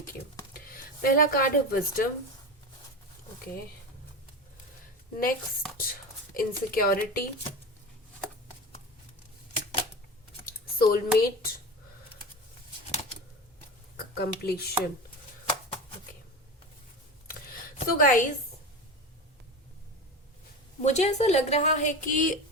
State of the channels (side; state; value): both; normal; correlation 0.26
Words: you. पहला कार्ड है wisdom. Okay, next insecurity, soulmate, completion. Okay, so guys, मुझे ऐसा लग रहा है कि